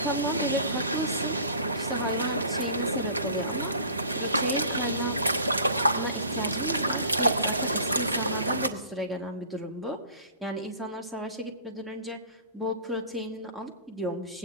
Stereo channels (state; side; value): inverted; both; correlation -0.45